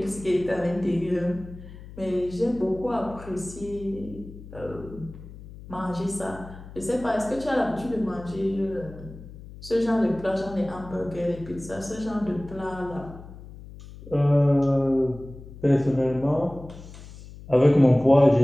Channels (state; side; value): noise; left; hum, 16 dB below the sound